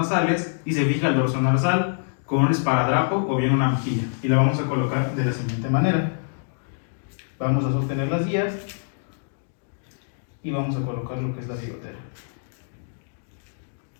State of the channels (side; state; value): right; silent; digital silence